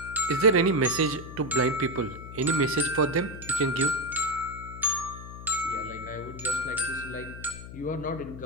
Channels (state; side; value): noise; left; hum, 12 dB below the sound